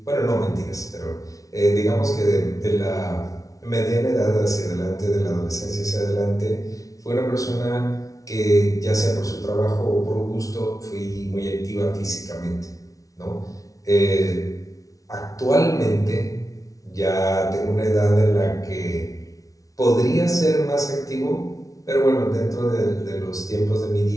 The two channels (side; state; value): right; late; 0.17 ms